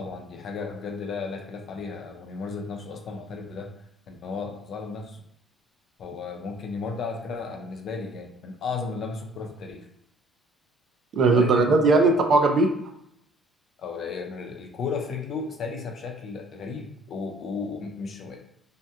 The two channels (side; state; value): both; normal; correlation 0.56